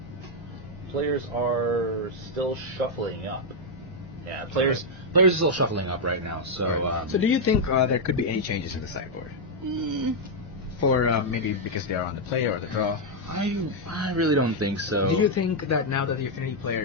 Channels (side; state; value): both; normal; correlation -0.01